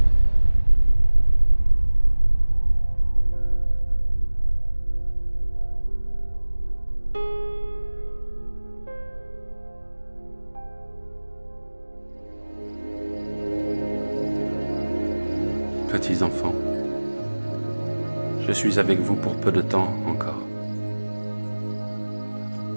Petits enfants, je suis avec vous pour peu de temps encore.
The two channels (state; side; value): inverted; both; correlation -1.00